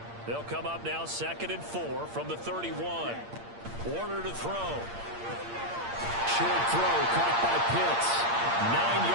They'll come up now 2nd and 4 from the 31. Warner to throw. Short throw caught by Pitts. 9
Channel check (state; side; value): late; left; 8.7 ms